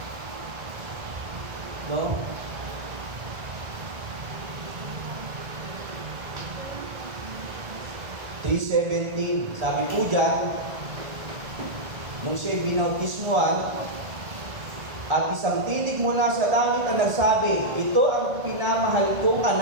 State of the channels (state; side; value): late; left; 1.4 ms